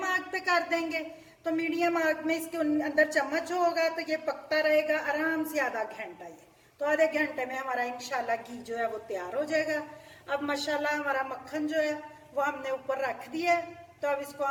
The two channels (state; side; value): identical; both; correlation 1.00